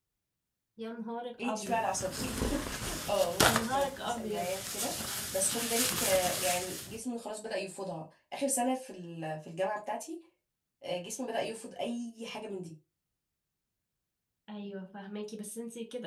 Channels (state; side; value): identical; both; correlation 1.00